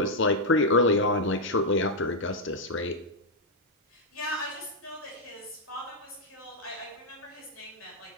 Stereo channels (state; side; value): normal; both; correlation -0.03